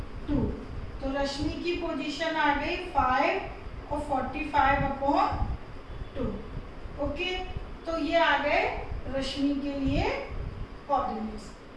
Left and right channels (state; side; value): identical; both; correlation 1.00